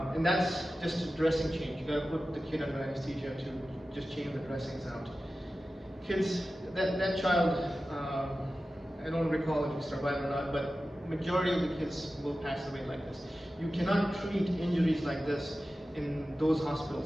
And that's just a dressing change. You gotta put the kid under anesthesia to just change the dressings out. Kids, that child, I don't recall if he survived or not, but majority of the kids will pass away like this. You cannot treat injuries like this in those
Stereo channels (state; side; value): normal; both; correlation 0.94